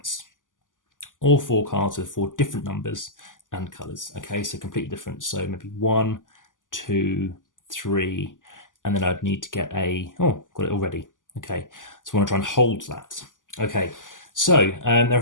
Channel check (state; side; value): late; right; 0.88 ms